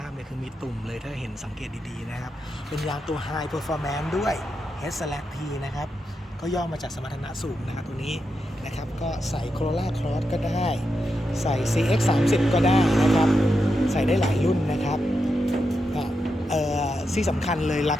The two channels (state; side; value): normal; both; correlation 0.86